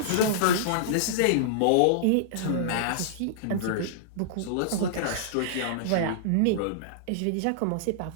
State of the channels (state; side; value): different; both; correlation -0.02